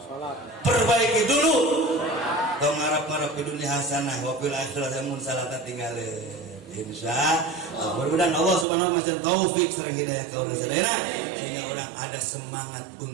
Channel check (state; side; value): drops out; left; at 8.7 s